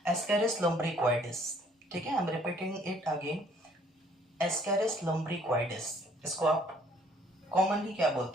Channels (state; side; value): normal; both; correlation 0.61